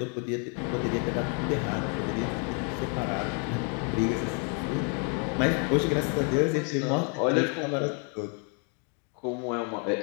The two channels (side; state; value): right; quieter; 39.4 dB